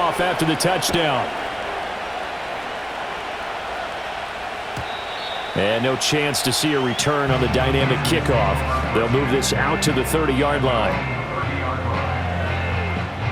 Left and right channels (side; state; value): both; identical; correlation 1.00